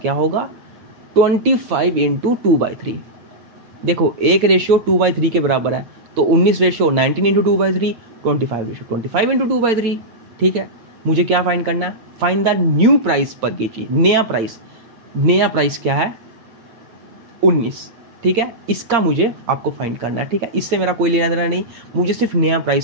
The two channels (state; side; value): late; left; 8.7 ms